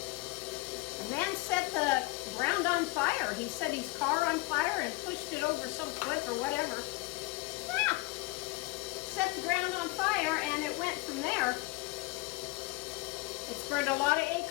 The man set the ground on fire. He set his car on fire and pushed it over some cliff or whatever. Yeah. Set the ground on fire and it went from there. It's burned a lot of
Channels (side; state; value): right; quieter; 22.4 dB